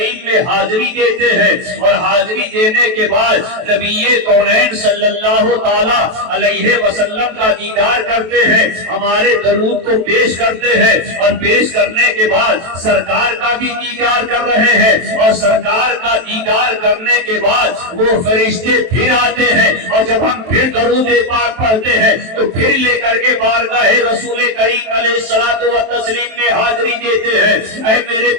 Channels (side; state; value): left; late; 23 ms